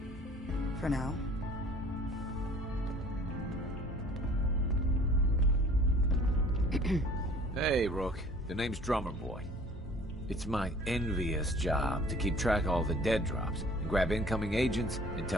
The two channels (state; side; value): normal; both; correlation 0.51